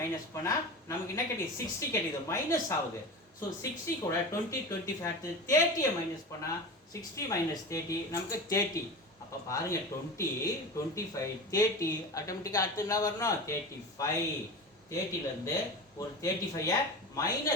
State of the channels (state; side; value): normal; both; correlation 0.29